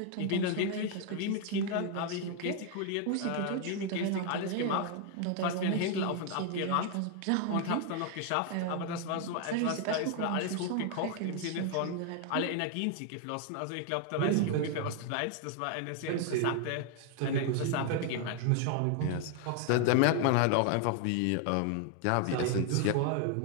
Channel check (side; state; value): both; different; correlation 0.00